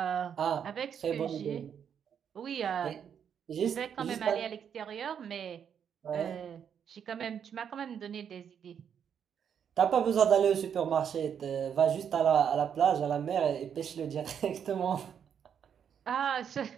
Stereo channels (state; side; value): quieter; left; 8.0 dB